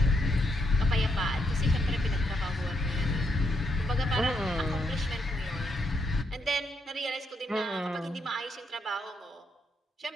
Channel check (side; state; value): both; normal; correlation 0.78